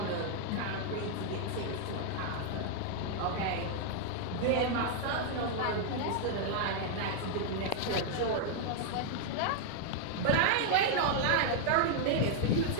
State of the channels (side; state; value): both; different; correlation 0.00